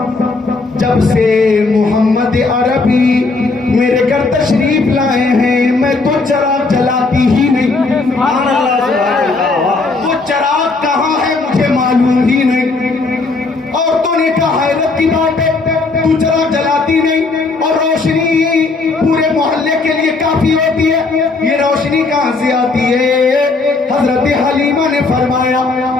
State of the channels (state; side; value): quieter; right; 3.7 dB